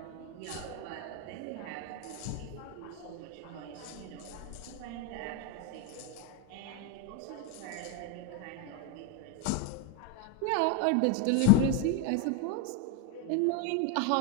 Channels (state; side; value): different; both; correlation 0.02